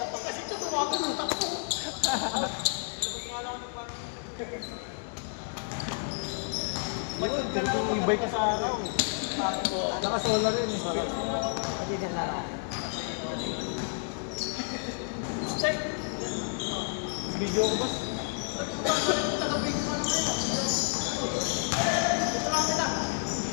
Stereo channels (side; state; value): right; silent; 58 dB below the other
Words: Ibay ka sa akin. Naka-solar rin eh. Video ko ba?